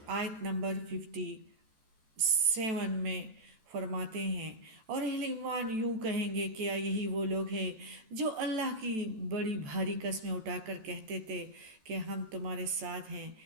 آیت نمبر 57 میں فرماتے ہیں، اور اہل ایمان یوں کہیں گے، کیا یہی وہ لوگ ہیں جو اللہ کی بڑی بھاری قسمیں اٹھا کر کہتے تھے کہ ہم تمہارے ساتھ ہیں؟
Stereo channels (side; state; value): left; late; 14 ms